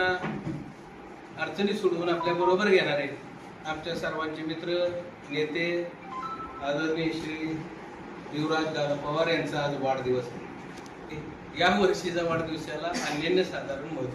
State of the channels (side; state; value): both; identical; correlation 1.00